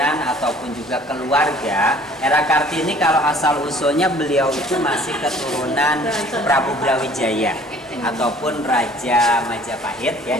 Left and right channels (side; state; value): both; normal; correlation 0.53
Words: ataupun juga keluarga, R.A. Kartini kalau asal usulnya beliau itu masih keturunan Prabu Brawijaya ataupun Raja Majapahit ya.